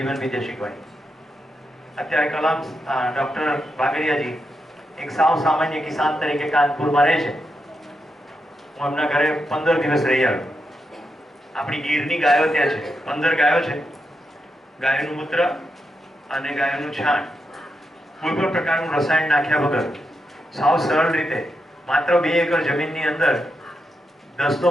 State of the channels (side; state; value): both; normal; correlation 0.85